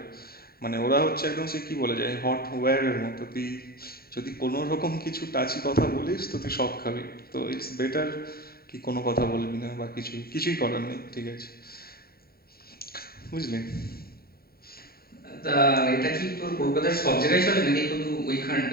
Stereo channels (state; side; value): late; right; 0.44 ms